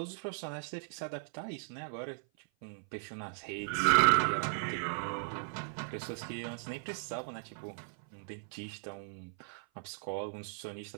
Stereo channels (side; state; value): left; silent; 53 dB below the other